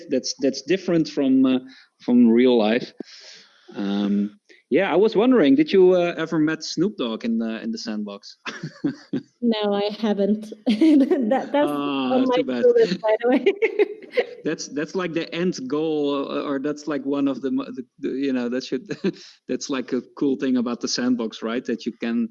different from real life. I was wondering, did you ever met Snoop Dogg in the Sandbox? No, I haven't. That's on my to-do list, by the way. That's like the end goal, or that's like one of the that should that's like a cool thing about the Sandbox, right? That you can,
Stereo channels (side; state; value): both; identical; correlation 1.00